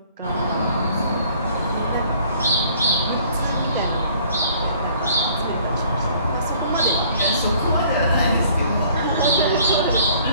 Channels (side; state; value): both; inverted; correlation -0.57